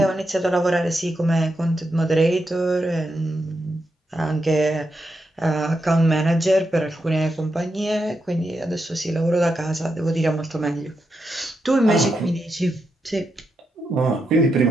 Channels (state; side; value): normal; both; correlation 0.85